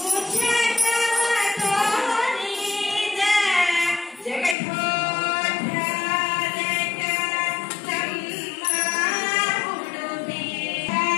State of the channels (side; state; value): right; drops out; at 4.5 s